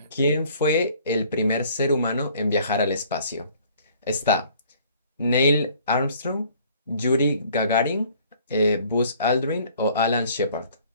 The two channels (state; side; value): inverted; both; correlation -0.56